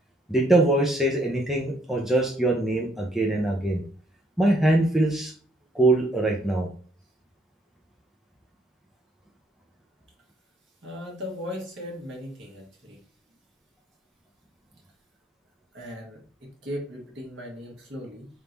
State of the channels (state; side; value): normal; both; correlation 0.68